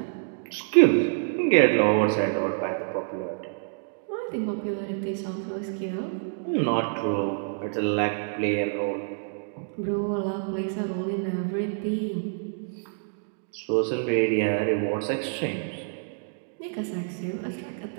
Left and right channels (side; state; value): left; silent; digital silence